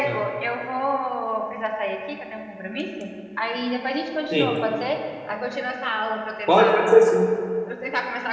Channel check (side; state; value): both; identical; correlation 1.00